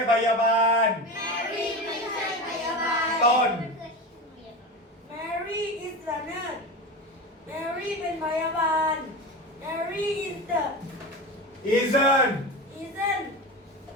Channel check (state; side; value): normal; both; correlation 0.25